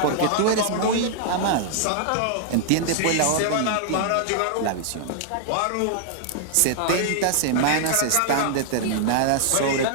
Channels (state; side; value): different; both; correlation -0.01